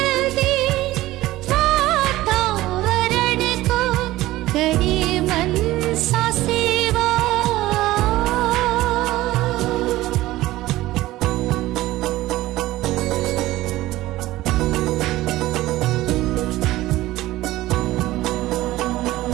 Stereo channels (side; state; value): left; quieter; 16.9 dB